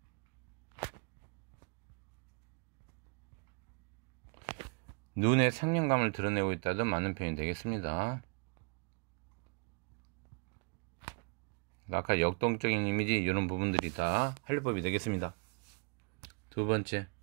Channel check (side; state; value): left; quieter; 34.5 dB